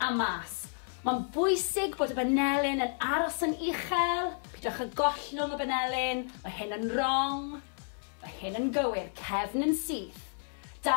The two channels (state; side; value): silent; right; 57 dB below the other